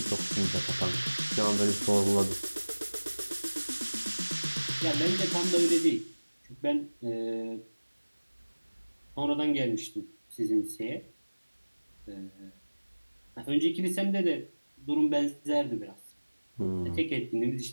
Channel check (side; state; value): both; inverted; correlation -1.00